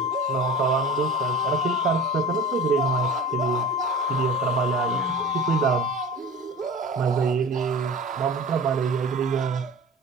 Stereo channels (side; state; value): both; normal; correlation 0.38